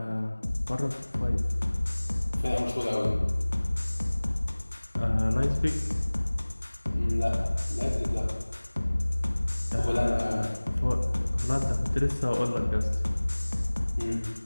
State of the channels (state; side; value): inverted; both; correlation -1.00